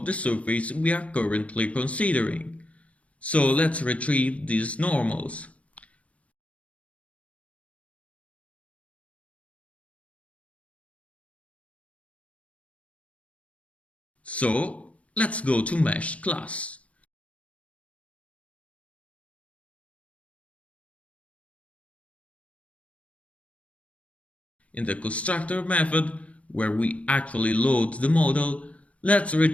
the surface we are currently considering. So let's retrieve these normals. So let's go to Mesh class. In the constructor method, where we actually load the model, let's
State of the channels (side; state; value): right; late; 0.065 ms